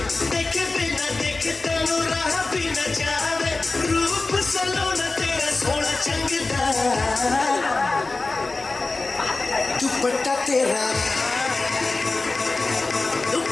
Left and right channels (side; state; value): right; quieter; 3.5 dB